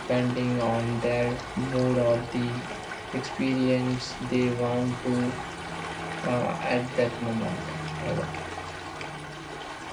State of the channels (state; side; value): identical; both; correlation 1.00